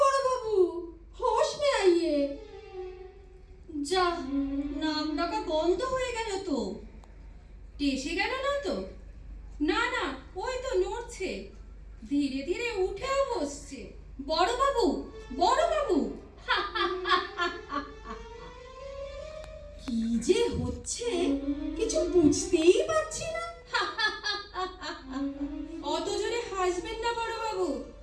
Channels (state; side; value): identical; both; correlation 1.00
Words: বড়বাবু, হোশ মে আইয়ে। যা, নাম ডাকা বন্ধ হয়ে গেল তো। টেসে গেল না তো? না না, ওই তো নড়ছে, ধীরে ধীরে উঠেও বসছে। বড়বাবু, বড়বাবু, কি যে হচ্ছে কিছু বুঝতেই পারছি না। অত জোরে হাসবেন না বড়বাবু,